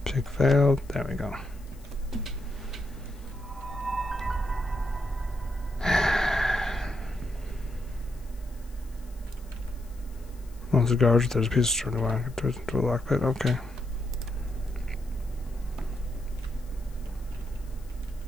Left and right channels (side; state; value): left; noise; hiss, 26 dB below the sound